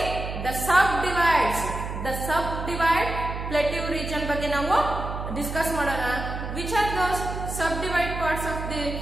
the sub divides. The sub divide plateau region ಬಗ್ಗೆ ನಾವು ಡಿಸ್ಕಸ್ ಮಾಡೋಣ. Which are those sub divide parts of the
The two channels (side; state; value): right; noise; hum, 6 dB below the sound